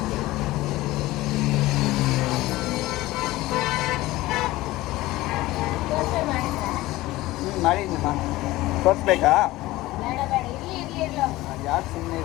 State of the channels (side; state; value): right; quieter; 18.1 dB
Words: ಮಾಡಿದ್ದೀನಮ್ಮ, ತೋರಿಸ್ಬೇಕಾ? ಯಾಕೆ ಸುಮ್ಮನೆ